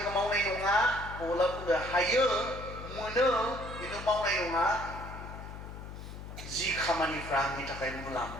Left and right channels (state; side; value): noise; left; hum, 11 dB below the sound